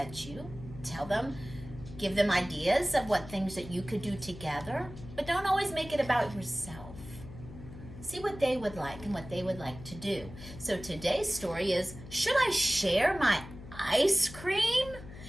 you. Give them ideas of what things that you could do together, but don't always make it about yourself. See what they would like and what they would like to do. So today's story is, Should I Share My Ice Cream?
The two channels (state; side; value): noise; left; hum, 15 dB below the sound